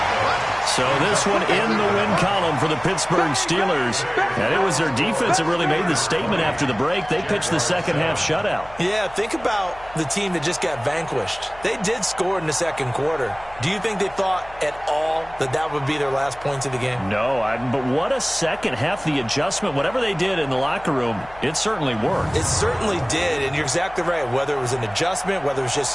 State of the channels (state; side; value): noise; left; hum, 21 dB below the sound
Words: So this one in the win column for the Pittsburgh Steelers. And it was their defense that really made the statement after the break. They pitched the second-half shutout. Yeah, think about the team that just got vanquished. They did score in the second quarter. Do you think they thought at all that that would be their last points of the game? No, but what a second half. The adjustment, whatever they did in the locker room, it certainly worked. It certainly did, and you're exactly right. Whether it was an adjustment, whether it was